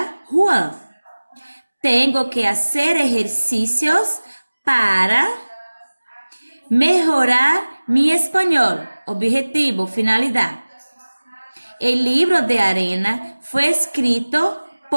Juan. Tengo que hacer ejercicios para melhorar mi español. Objetivo, finalidade. El libro de arena fue escrito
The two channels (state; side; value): inverted; both; correlation -1.00